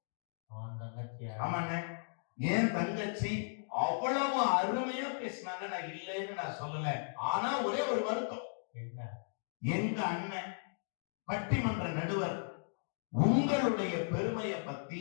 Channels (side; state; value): right; silent; digital silence